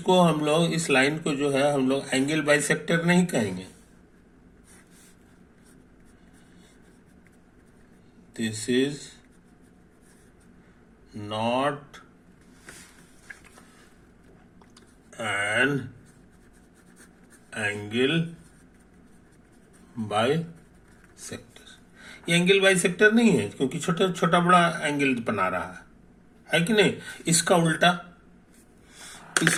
हम लोग, इस लाइन को जो है हम लोग एंगल बाइसेक्टर नहीं कहेंगे। This is not an angle bisector. ये एंगल बाइसेक्टर नहीं है क्योंकि छोटा छोटा बड़ा एंगल बना रहा है कि नहीं। इसका उल्टा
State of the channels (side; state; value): both; identical; correlation 1.00